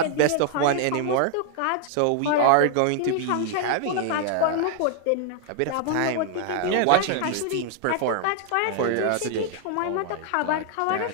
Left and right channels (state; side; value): different; both; correlation 0.00